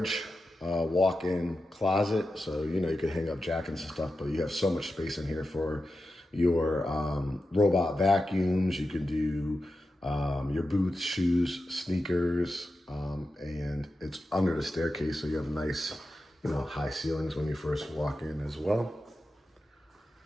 walk-in closet, so you could hang up jackets and stuff, but you have so much space in here for your robot vacuums. You could do your boots, shoes, sneakers, and it's under the staircase, so you have nice high ceilings when you first walk in as well.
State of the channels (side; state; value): both; normal; correlation 0.91